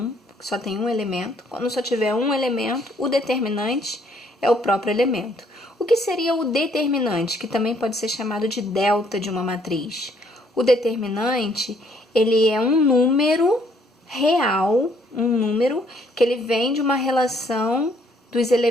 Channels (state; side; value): normal; both; correlation 0.66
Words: que só tem um elemento. Quando só tiver um elemento, o determinante é o próprio elemento. O que seria o determinante, que também pode ser chamado de delta de uma matriz? O determinante, ele é um número real, um número que ele vem de uma relação dos